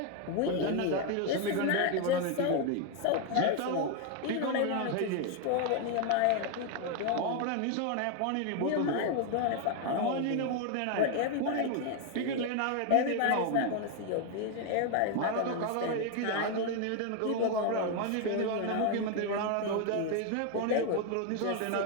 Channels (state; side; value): different; both; correlation 0.01